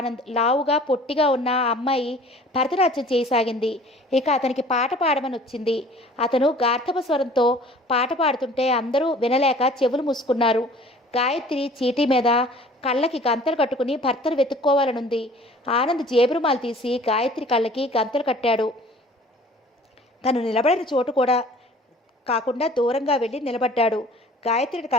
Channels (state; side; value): normal; both; correlation 0.49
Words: లావుగా పొట్టిగా ఉన్న ఆ అమ్మాయి భరతనాట్యం చేయసాగింది. ఇక అతనికి పాట పాడమని వచ్చింది. అతను గార్ధప స్వరంతో పాట పాడుతుంటే అందరూ వినలేక చెవులు మూసుకున్నారు. గాయత్రి చీటీ మీద కళ్ళకి గంతలు కట్టుకుని భర్తను వెతుక్కోవాలనుంది. ఆనంద్ జేబురుమాలు తీసి గాయత్రి కళ్ళకి గంతలు కట్టాడు. తను నిలబడిన చోటు కూడా కాకుండా దూరంగా వెళ్ళి నిలబడ్డాడు. గాయత్రిని